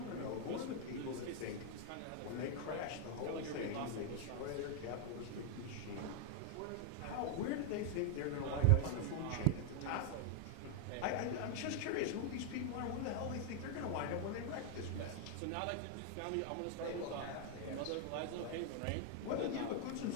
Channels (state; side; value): different; both; correlation 0.00